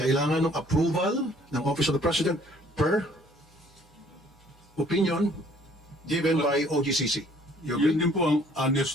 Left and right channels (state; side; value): normal; both; correlation 0.59